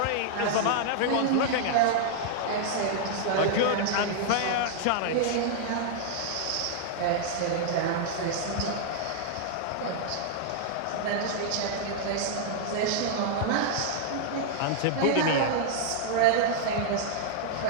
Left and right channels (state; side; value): different; both; correlation -0.01